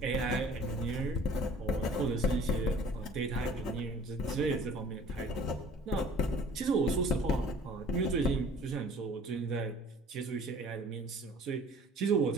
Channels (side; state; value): both; normal; correlation 0.49